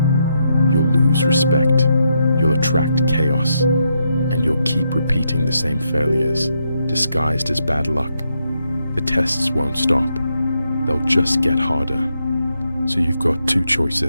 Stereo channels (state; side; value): inverted; both; correlation -0.80